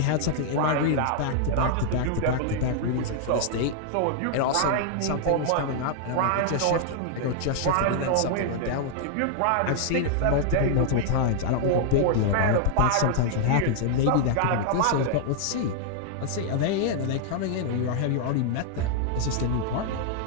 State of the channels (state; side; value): different; both; correlation -0.01